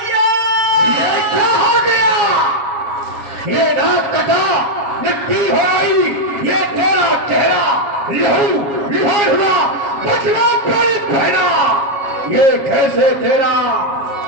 ये क्या हो गया? ये नाक कटा, मिट्टी हो आई, ये तेरा चेहरा लहू लिहार हुआ, बचना पड़ी बहना। ये कैसे तेरा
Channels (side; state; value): left; late; 7.3 ms